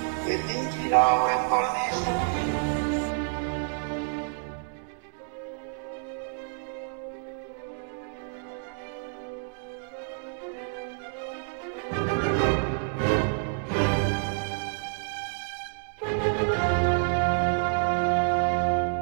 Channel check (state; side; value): silent; left; 59 dB below the other